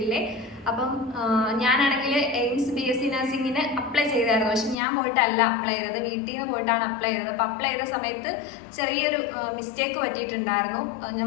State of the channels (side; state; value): right; drops out; at 4.8 s